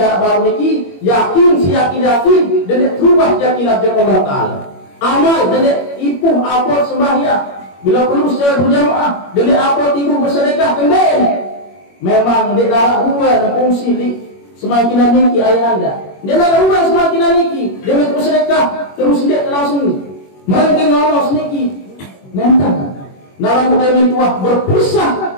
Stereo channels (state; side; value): late; right; 21 ms